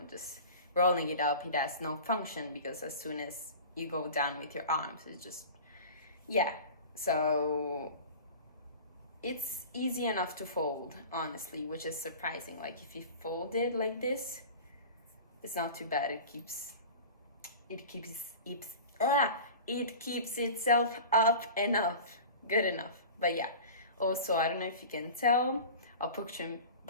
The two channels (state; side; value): inverted; both; correlation -0.37